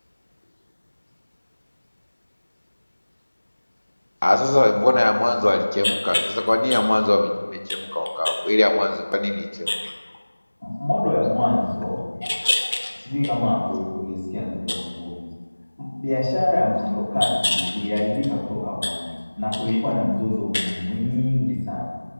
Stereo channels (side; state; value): both; inverted; correlation -1.00